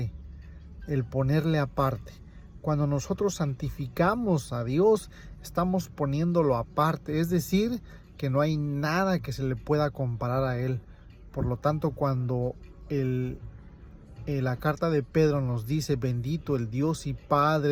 El ponerle aparte. Cuando nosotros santificamos a Dios, estamos poniéndolo aparte, es decir, que no hay nada que se le pueda comparar a Él. Por lo tanto, cuando la carta de Pedro nos dice: bendito el Dios y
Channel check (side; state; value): both; identical; correlation 1.00